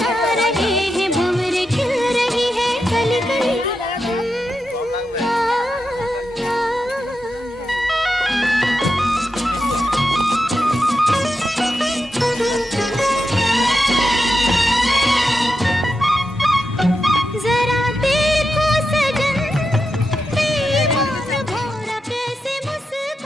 रहे हैं भंवर खिल रही है कली कली। जरा देखो सजन प्रेम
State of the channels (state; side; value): normal; both; correlation 0.88